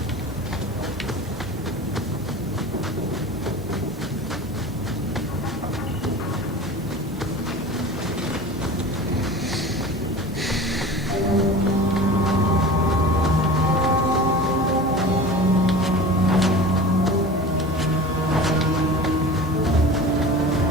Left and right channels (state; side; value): normal; both; correlation 0.36